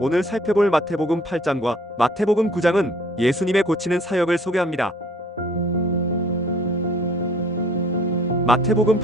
살펴볼 마태복음 8장과 마태복음 9장은 예수님의 고치는 사역을 소개합니다. 마태복음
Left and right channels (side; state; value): both; normal; correlation 0.55